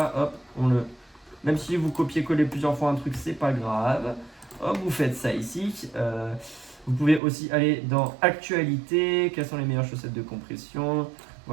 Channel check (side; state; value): left; drops out; at 7.2 s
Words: Hop, même si vous copiez-collez plusieurs fois un truc, c'est pas grave. Hop, vous faites ça ici. Vous pouvez aussi aller dans actualité. Quelles sont les meilleures chaussettes de compression?